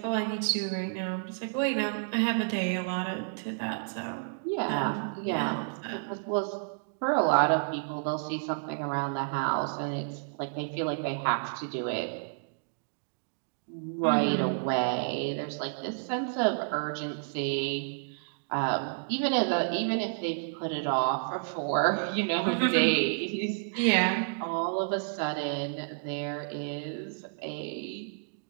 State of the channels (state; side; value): silent; left; digital silence